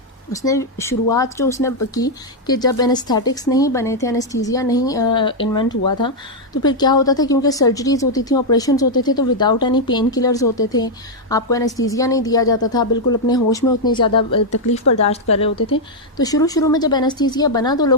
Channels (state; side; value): normal; both; correlation -0.01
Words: उसने शुरुआत जो उसने की कि जब एनेस्थेटिक्स नहीं बने थे, एनेस्थीसिया नहीं इन्वेंट हुआ था, तो फिर क्या होता था, क्योंकि सर्जरीज होती थी, ऑपरेशंस होते थे, तो विदाउट एनी पेन किलर्स होते थे, आपको एनेस्थीसिया नहीं दिया जाता था, बिल्कुल अपने होश में उतनी ज़्यादा तकलीफ़ बर्दाश्त कर रहे होते थे। तो शुरू में जब एनेस्थीसिया बना तो